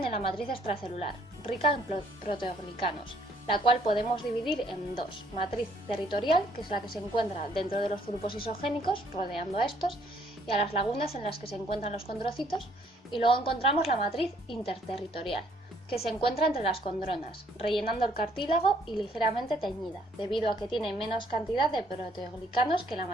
en la matriz extracelular, rica en proteoglicanos, la cual podemos dividir en dos: matriz territorial, que es la que se encuentra dentro de los grupos isogénicos, rodeando a estos, y a las lagunas en las que se encuentran los condrocitos, y luego encontramos la matriz interterritorial, que se encuentra entre las condronas, rellenando el cartílago y ligeramente teñida, debido a que tiene menos cantidad de proteoglicanos que la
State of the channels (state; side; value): normal; both; correlation 0.65